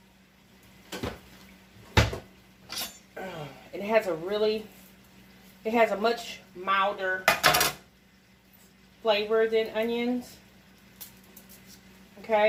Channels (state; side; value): identical; both; correlation 1.00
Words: It has a much milder flavor than onions.